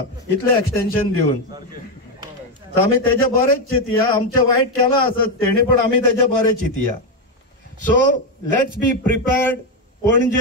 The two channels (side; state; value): both; normal; correlation 0.07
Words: इतले एक्सटेन्शन दिवन. आमी तेजे बरेच चिंतया. आमचे वायट केला आसत तेणी, पण आमी तेजे बरें चिंतया. So let's be prepared.